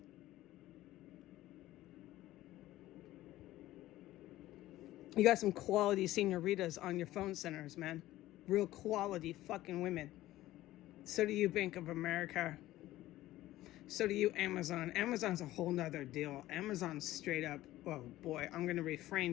You got some quality senoritas on your phone centers, man. Real quality fucking women. So do you, Bank of America. So do you, Amazon. Amazon's a whole nother deal. Amazon's straight up, oh boy, I'm going to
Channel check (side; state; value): right; quieter; 15.7 dB